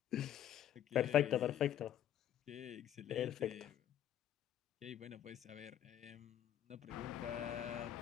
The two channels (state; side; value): quieter; right; 10.9 dB